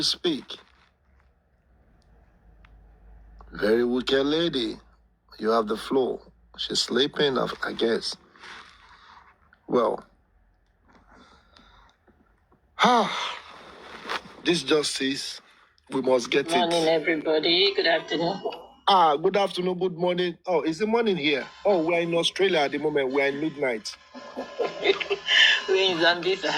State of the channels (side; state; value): both; identical; correlation 1.00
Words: speak? Very wicked lady. You have the floor. She's sleeping, I guess. Well. This justice, we must get Good morning, everybody. Good afternoon. Good afternoon, good morning. Oh, is the morning here? Oh, we're in Australia at the moment. We're in midnight. We're in